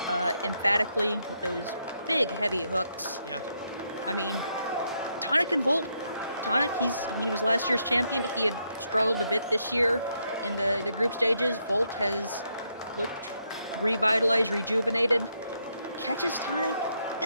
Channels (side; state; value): both; inverted; correlation -0.78